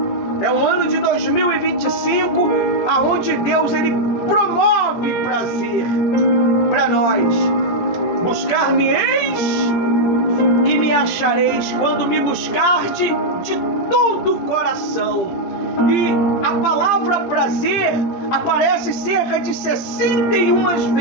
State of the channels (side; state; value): right; late; 17 ms